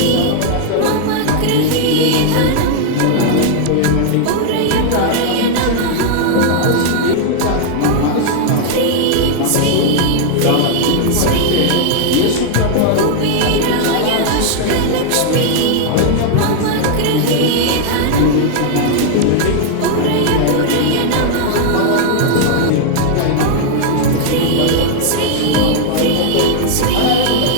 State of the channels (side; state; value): both; different; correlation 0.00